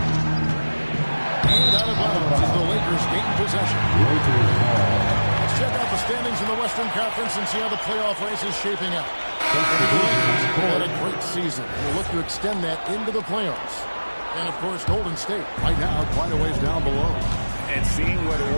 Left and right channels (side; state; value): both; inverted; correlation -1.00